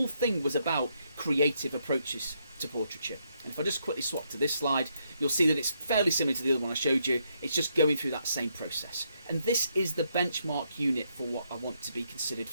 thing was about creative approaches to portraiture. And if I just quickly swap to this slide, you'll see that it's fairly similar to the other one I showed you. It's just going through that same process. And this is the benchmark unit for what I want to be considered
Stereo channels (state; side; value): inverted; both; correlation -0.76